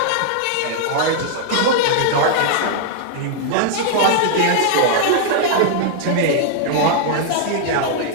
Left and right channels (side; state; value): both; different; correlation -0.01